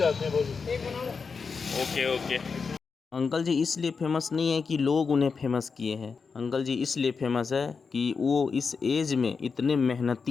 हैं। ओके। अंकल जी इसलिए फेमस नहीं है कि लोग उन्हें फेमस किए हैं। अंकल जी इसलिए फेमस है कि वो इस एज में इतने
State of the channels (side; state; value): right; quieter; 5.2 dB